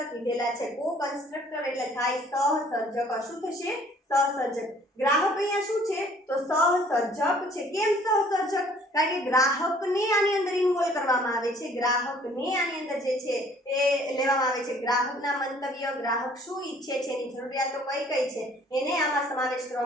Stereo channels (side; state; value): both; normal; correlation 0.57